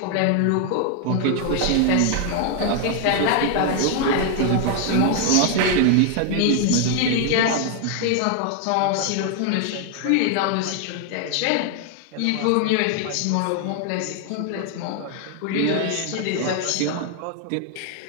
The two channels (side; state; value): both; different; correlation 0.00